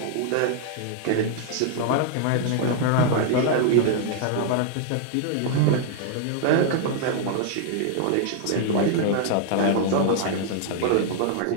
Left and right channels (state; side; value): different; both; correlation -0.01